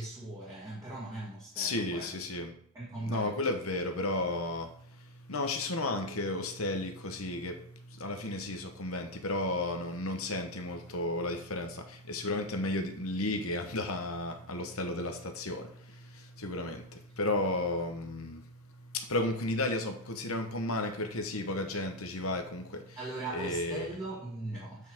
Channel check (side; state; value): both; normal; correlation 0.04